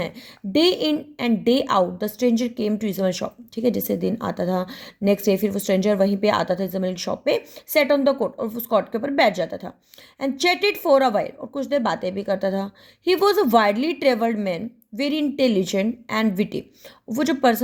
Day in and day out the stranger came to Isabel shop, ठीक है, जैसे दिन आता था नेक्स्ट डे फिर वो स्ट्रेंजर वहीं पे आता था इज़ाबेल की शॉप पे, सेट ऑन द कोट, और उस कोट के ऊपर बैठ जाता था, and chatted for a while, और कुछ देर बातें भी करता था। He was a widely travelled man, very intelligent and witty. वो जो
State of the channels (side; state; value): both; identical; correlation 1.00